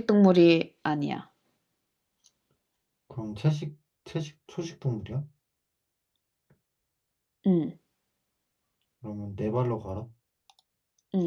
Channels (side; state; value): both; identical; correlation 1.00